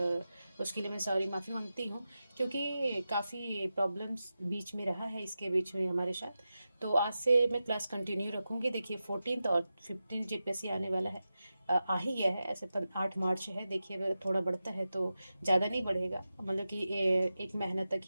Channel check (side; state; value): both; inverted; correlation -0.92